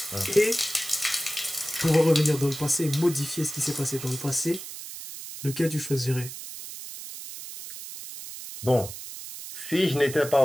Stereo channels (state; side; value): noise; right; hiss, 11 dB below the sound